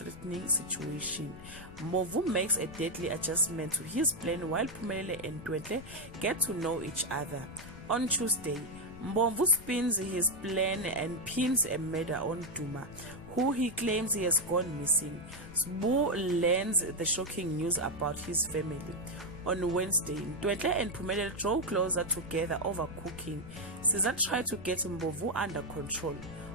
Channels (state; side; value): noise; left; rumble, 15 dB below the sound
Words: situation. Mbovu makes a deadly adjustment to his plan while Phumelele and Ntwentle get to know each other. On Tuesday, Mbovu spins his plan and pins a murder on Duma, who he claims he has gone missing. Sbu learns the shocking news about his family. On Wednesday, Ntwentle and Phumelele draw closer together over cooking. Caesar tried to get Mbovu under control.